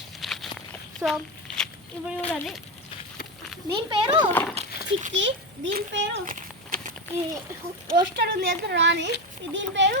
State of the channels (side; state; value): both; normal; correlation 0.14